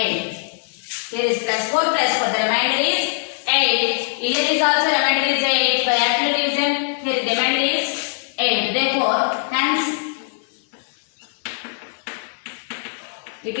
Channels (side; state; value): right; silent; digital silence